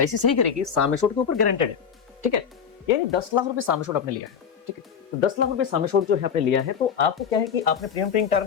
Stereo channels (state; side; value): quieter; right; 7.3 dB